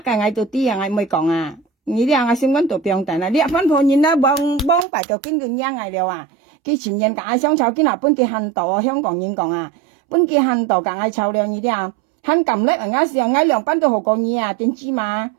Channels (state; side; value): drops out; left; at 4.9 s